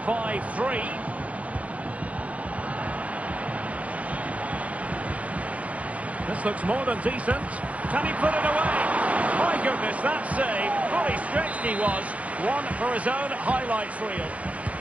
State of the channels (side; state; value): left; late; 0.066 ms